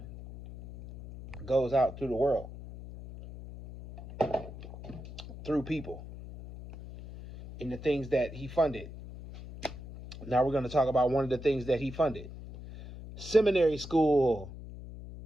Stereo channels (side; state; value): left; noise; hum, 13 dB below the sound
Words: goes out through the world, through people, in the things that he funded. Now we're going to talk about one of the things that he funded. Seminary school.